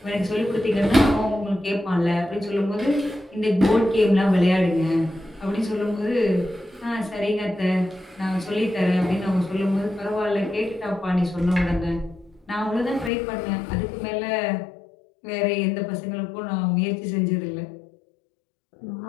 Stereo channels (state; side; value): drops out; right; at 13.1 s